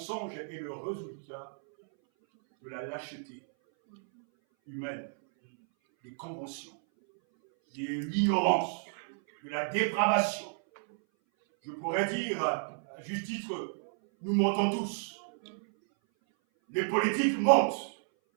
est le résultat de la lâcheté humaine, des conventions, de l'ignorance, de la dépravation. Je pourrais dire, à juste titre, nous mentons tous. Les politiques mentent.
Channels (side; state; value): left; silent; 57 dB below the other